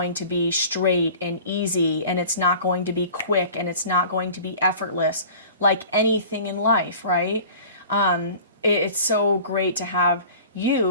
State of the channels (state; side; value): inverted; both; correlation -0.43